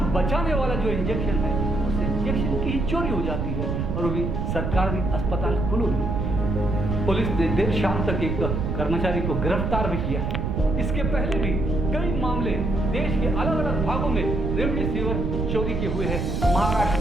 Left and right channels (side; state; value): right; noise; rumble, 1 dB below the sound